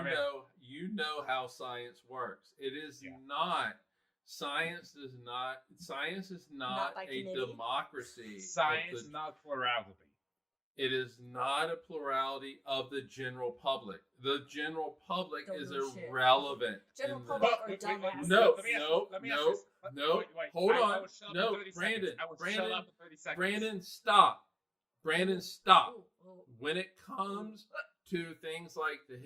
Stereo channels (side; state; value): both; identical; correlation 1.00